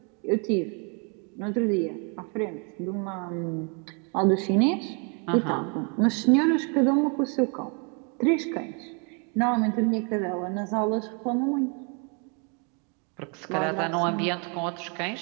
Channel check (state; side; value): quieter; left; 36.9 dB